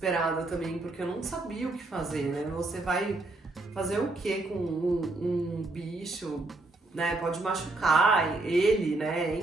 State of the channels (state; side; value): quieter; left; 3.0 dB